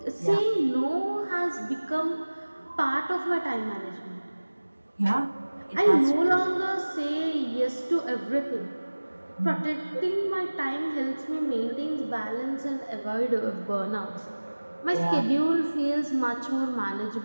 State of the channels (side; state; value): both; inverted; correlation -1.00